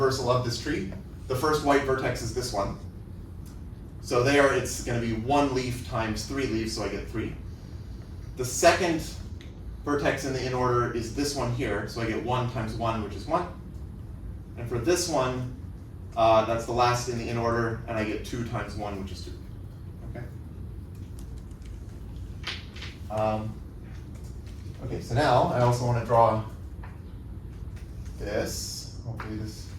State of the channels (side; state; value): both; identical; correlation 1.00